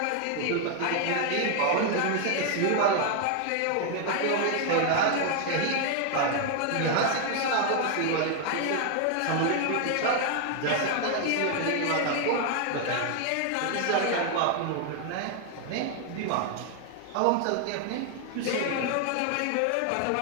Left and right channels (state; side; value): different; both; correlation 0.00